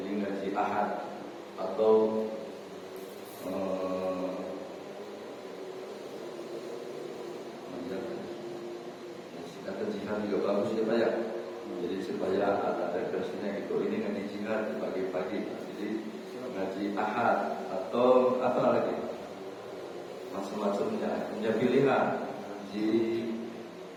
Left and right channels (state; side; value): identical; both; correlation 1.00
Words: ngaji ahad atau singkatan jihad juga bagus ya Pak ya. Jadi supaya ada referensinya gitu. Ini ngaji jihad di pagi-pagi. Jadi ngaji ahad atau apa lagi? Macam-macamnya. Punya pilihan. Ngaji